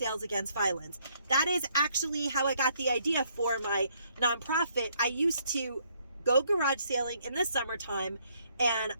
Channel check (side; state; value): both; inverted; correlation -0.69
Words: Against Violence. That is actually how I got the idea for my nonprofit. I used to go garage sailing in the summertime, and